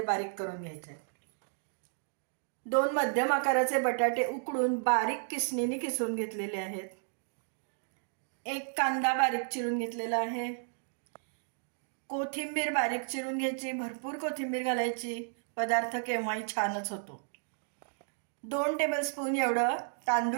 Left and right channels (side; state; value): left; silent; digital silence